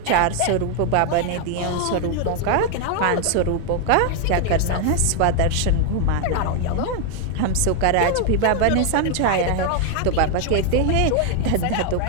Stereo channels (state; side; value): different; both; correlation 0.01